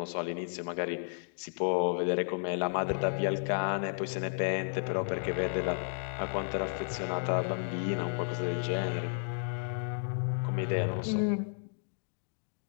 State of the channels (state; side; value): silent; right; digital silence